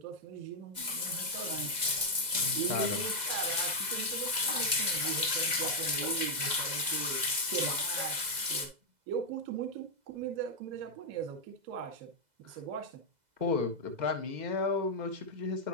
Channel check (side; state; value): left; late; 2.0 ms